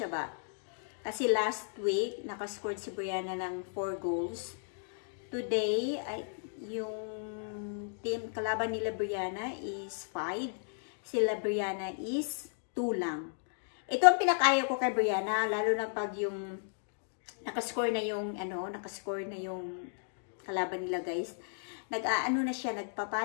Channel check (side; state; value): right; silent; digital silence